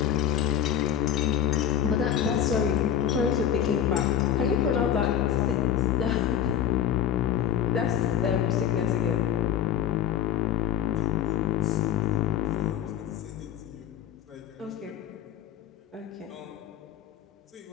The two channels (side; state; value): right; quieter; 9.9 dB